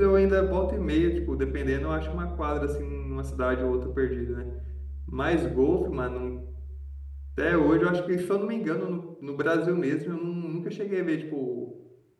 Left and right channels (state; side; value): identical; both; correlation 1.00